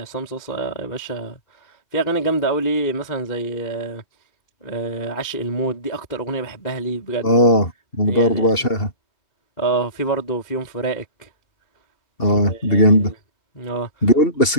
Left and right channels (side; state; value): right; late; 2.7 ms